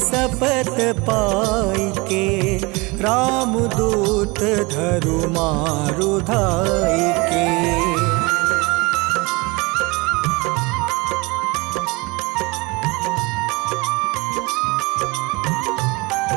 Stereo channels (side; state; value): left; quieter; 25.1 dB